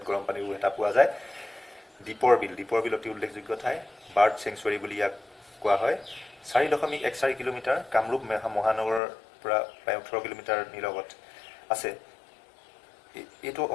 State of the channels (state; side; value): drops out; right; at 9.0 s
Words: গৰম পানীৰ এটা পোৱা যায়। দীপৰ বিল অতি উল্লেখযোগ্য ঠাই, বাৰ্ড চেংচুৱাৰী বুলি ইয়াক কোৱা হয়। 4.14 কিলোমিটাৰ, কামৰূপ মহানগৰৰ পৰা প্ৰায় 18 কিলোমিটাৰ নিলগত আছে। এইটো